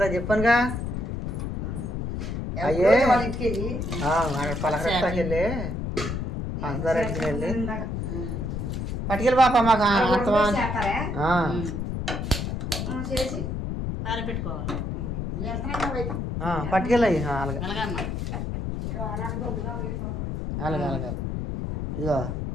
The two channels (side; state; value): left; noise; rumble, 3 dB below the sound